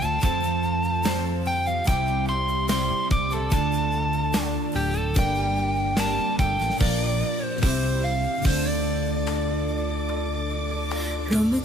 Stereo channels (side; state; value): both; normal; correlation 0.69